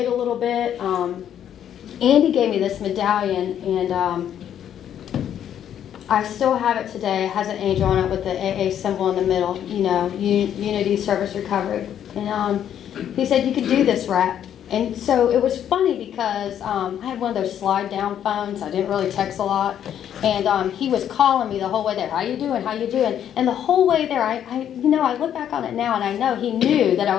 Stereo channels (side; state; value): right; quieter; 9.9 dB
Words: a little bit. Andy gave me this medallion, and I still have it today. It has an angel on it with the AA symbol in the middle, you know, Unity Service Recovery. And he said, you can do this, Rat. And so it was funny because I had one of those slide-down phones. I didn't really text a lot. And he was calling me the whole way there. How you doing? How you doing? And the whole way there, I look back on it now, and I know he knew that I